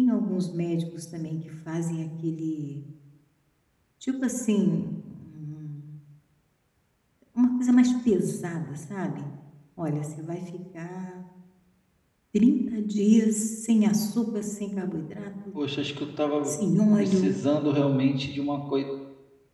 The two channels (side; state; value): both; identical; correlation 1.00